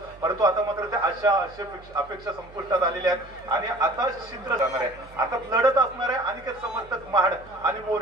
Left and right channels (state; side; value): noise; right; hum, 23 dB below the sound